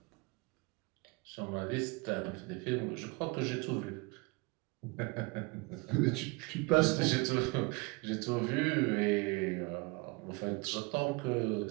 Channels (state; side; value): quieter; left; 26.5 dB